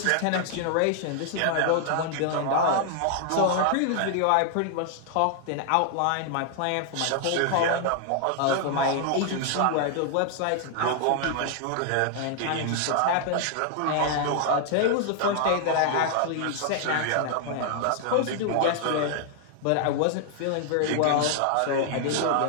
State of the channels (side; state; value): both; different; correlation 0.00